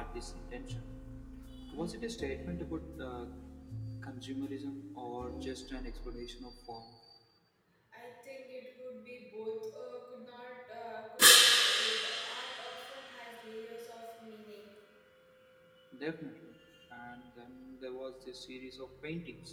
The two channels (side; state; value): both; identical; correlation 1.00